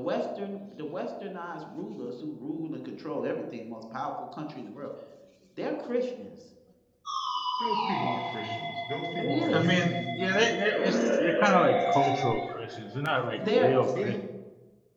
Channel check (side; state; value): both; identical; correlation 1.00